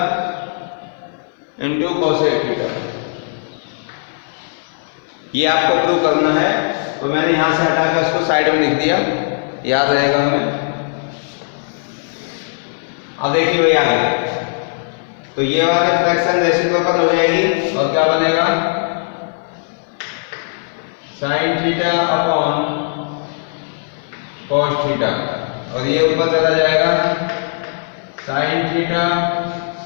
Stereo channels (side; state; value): right; silent; 59 dB below the other